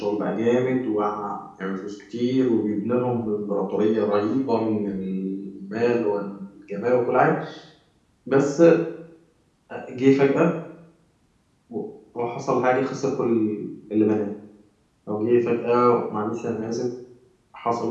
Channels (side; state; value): both; identical; correlation 1.00